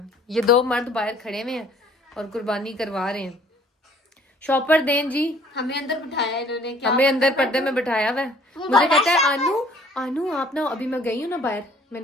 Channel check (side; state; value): both; normal; correlation 0.56